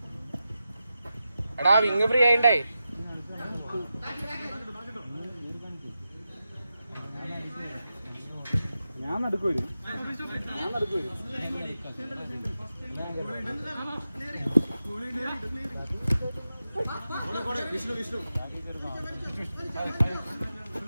എടാ വിങ് ഫ്രീ ആയിണ്ടേ. ഞാൻ നടക്കൂ.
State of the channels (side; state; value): both; inverted; correlation -0.91